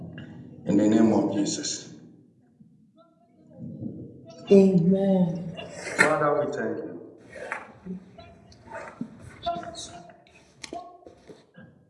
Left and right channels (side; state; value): both; identical; correlation 1.00